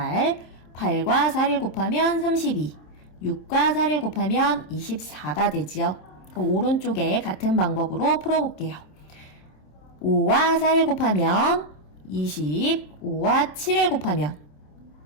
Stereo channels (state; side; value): late; right; 27 ms